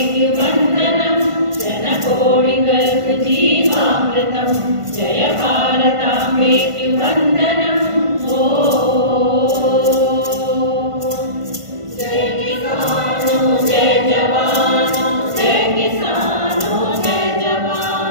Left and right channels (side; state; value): left; late; 1.5 ms